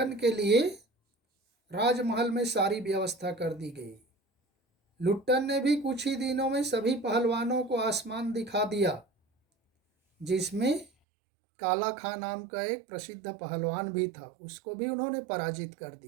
के लिए राजमहल में सारी व्यवस्था कर दी गई। लुट्टन ने भी कुछ ही दिनों में सभी पहलवानों को आसमान दिखा दिया। जिसमें काला खां नाम का एक प्रसिद्ध पहलवान भी था, उसको भी उन्होंने पराजित कर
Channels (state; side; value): drops out; left; at 10.9 s